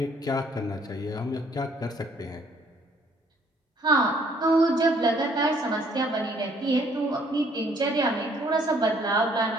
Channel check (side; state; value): both; normal; correlation 0.63